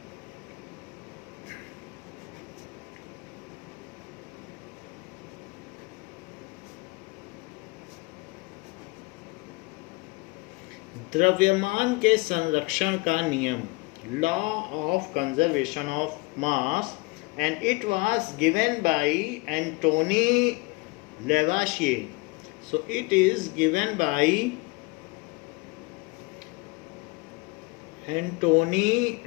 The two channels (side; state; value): right; quieter; 25.8 dB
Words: द्रव्यमान के संरक्षण का नियम, law of conservation of mass, and it was given by Antony Lavoisier. So it is given by Antony